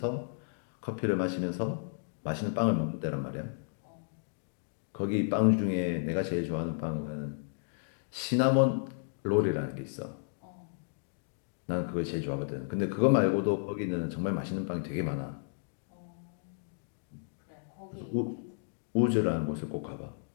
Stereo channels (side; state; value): right; silent; digital silence